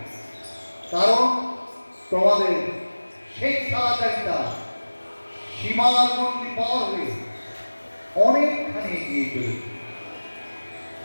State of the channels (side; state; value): both; inverted; correlation -1.00